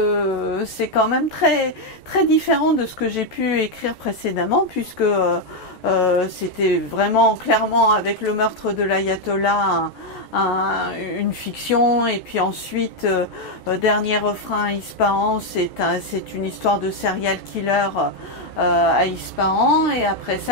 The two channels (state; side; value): late; right; 14 ms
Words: c'est quand même très, très différent de ce que j'ai pu écrire précédemment, puisque c'était vraiment clairement avec le meurtre de l'ayatollah une fiction, et puis ensuite Dernier refrain à Ispahan, c'est une histoire de serial killer à Ispahan, et après